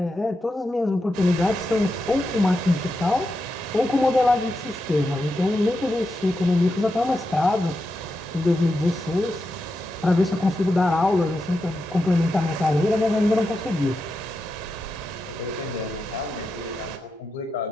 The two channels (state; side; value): normal; both; correlation 0.87